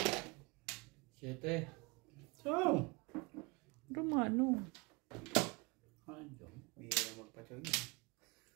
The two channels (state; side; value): quieter; left; 27.3 dB